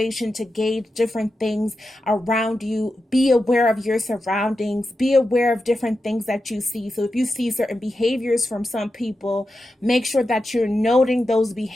to gauge different things around you. Be aware of your surroundings. Be aware of different things that you see. So if you see certain behaviors from some people, make sure that you're noting those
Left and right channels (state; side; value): normal; both; correlation 0.90